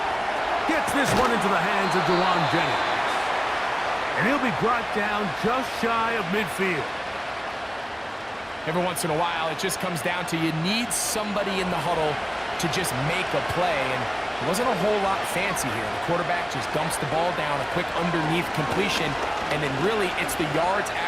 Gets this one into the hands of Dewan Jennings. And he'll be brought down just shy of midfield. Every once in a while, it just comes down to you need somebody in the huddle to just make a play. And it wasn't a whole lot fancy here. The quarterback just dumps the ball down, a quick underneath completion, and then really it's the yards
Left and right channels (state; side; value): identical; both; correlation 1.00